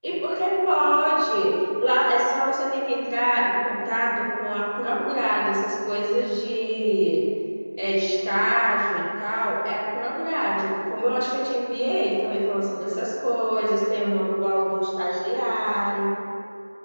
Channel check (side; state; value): both; inverted; correlation -1.00